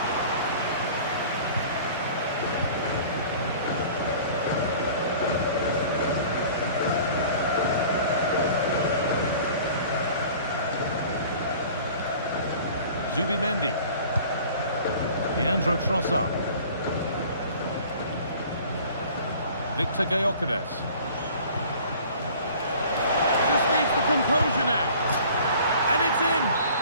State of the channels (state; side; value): inverted; both; correlation -0.47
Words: Zubimendi. Leandro Trossard. Victor Gyökeres. Just needs the composure now. And it's in!